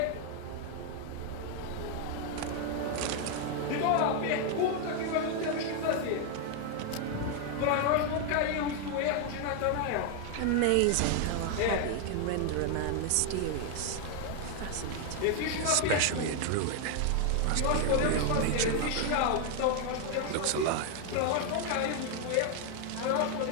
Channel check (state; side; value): different; both; correlation 0.00